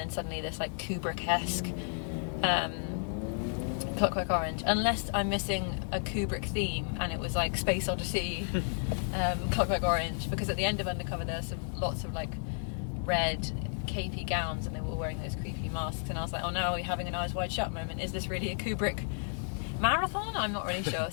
suddenly this like Kubrick-esque Clockwork Orange, unless I'm missing a Kubrick theme and it was like Space Odyssey, Clockwork Orange, because at the end of Undercover there's lots of like red capey gowns and they were wearing those creepy masks, and I was like, oh no, are we having an Eyes Wide Shut moment? Is this really a Kubrick marathon? I'm not really sure.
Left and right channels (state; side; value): silent; right; 56 dB below the other